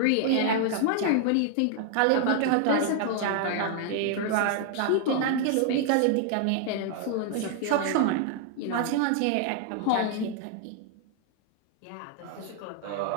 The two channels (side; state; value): both; different; correlation 0.00